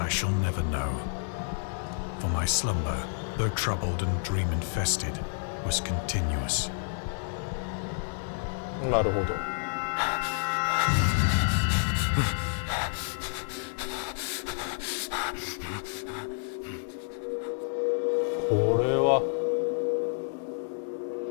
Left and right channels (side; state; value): right; silent; 58 dB below the other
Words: shall never know. For my slumber, though troubled and dream-infested, was continuous. なるほど。これは